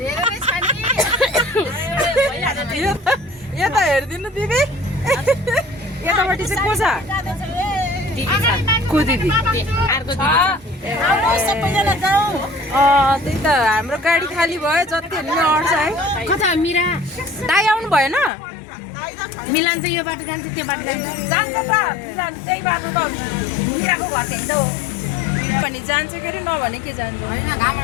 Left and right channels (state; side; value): drops out; right; at 18.3 s